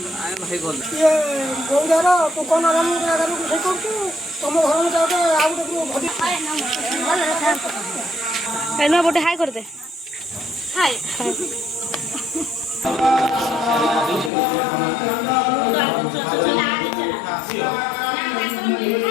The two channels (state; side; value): drops out; right; at 14.3 s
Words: आए भाई बोल ये गौदारा तो कोन आराम करू से करतु तुम घर में जाओ तो आउ तो भदी एनो बोटे हाय कर दे हाय